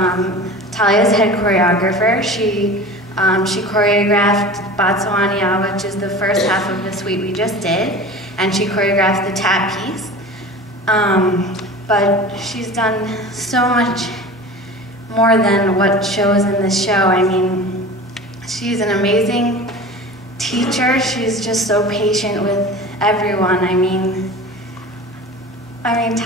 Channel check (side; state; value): both; normal; correlation 0.36